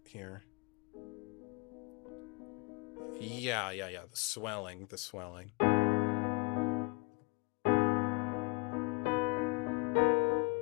here. Yeah, the swelling.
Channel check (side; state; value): right; quieter; 28.1 dB